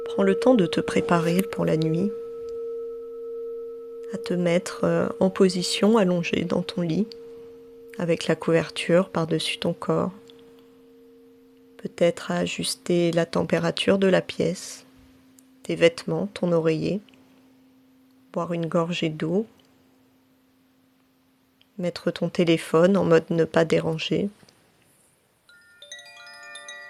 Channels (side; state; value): both; identical; correlation 1.00